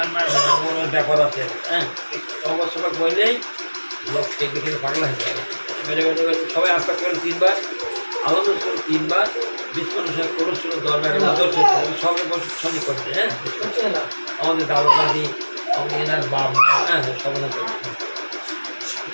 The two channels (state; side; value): inverted; both; correlation -1.00